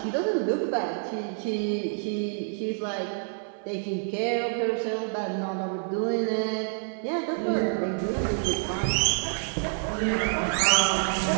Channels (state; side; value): silent; left; 60 dB below the other